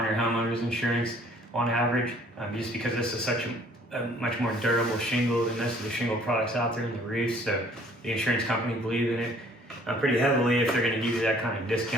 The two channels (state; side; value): normal; both; correlation 0.57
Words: your homeowner's insurance on average, just because this is such a much more durable shingle than most of the shingle products out there in the roof. So the insurance company believes in it pretty heavily if they're going to give you that kind of